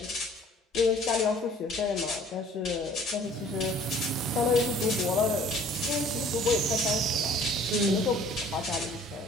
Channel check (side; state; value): both; normal; correlation 0.52